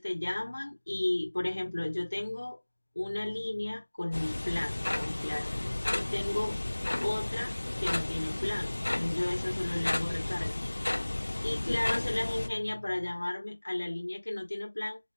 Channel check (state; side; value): inverted; both; correlation -1.00